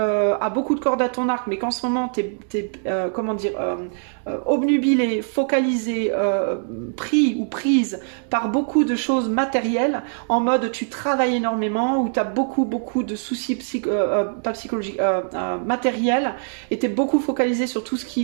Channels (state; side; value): silent; left; digital silence